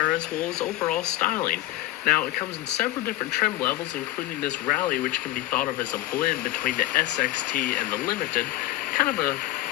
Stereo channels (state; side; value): quieter; right; 16.5 dB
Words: as well as overall styling. Now, it comes in several different trim levels, including this Rallye, which can be thought of as a blend between the SXT and the Limited. Kind of a